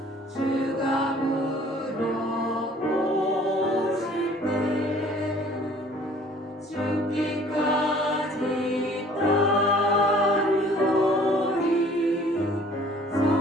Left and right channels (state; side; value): normal; both; correlation 0.53